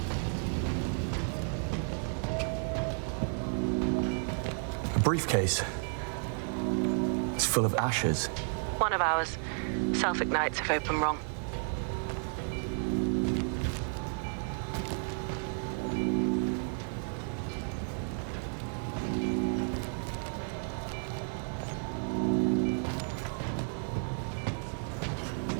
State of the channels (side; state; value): left; silent; 56 dB below the other